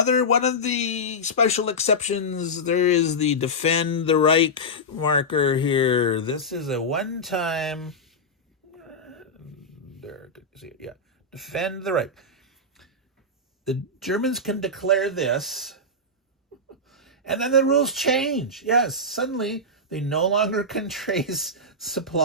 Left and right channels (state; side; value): normal; both; correlation -0.10